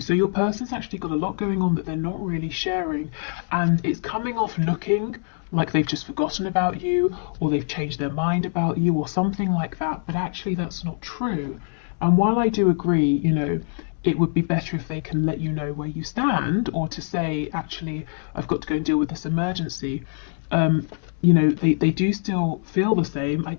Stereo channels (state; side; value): silent; right; 60 dB below the other